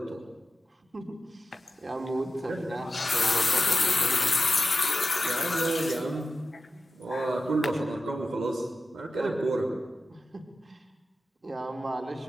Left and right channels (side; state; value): both; normal; correlation 0.93